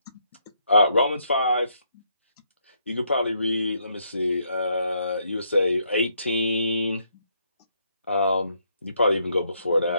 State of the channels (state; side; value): inverted; both; correlation -0.73